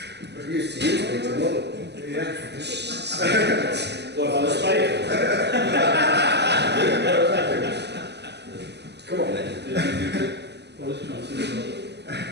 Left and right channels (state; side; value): late; left; 0.49 ms